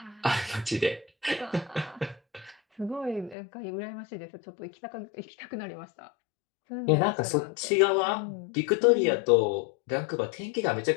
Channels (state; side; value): drops out; right; at 3.4 s